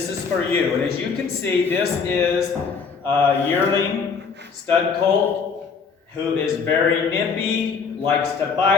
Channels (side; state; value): right; quieter; 5.5 dB